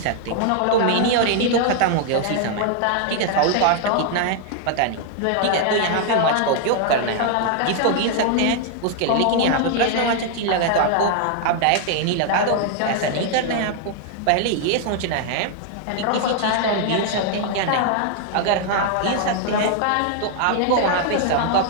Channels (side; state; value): both; different; correlation 0.00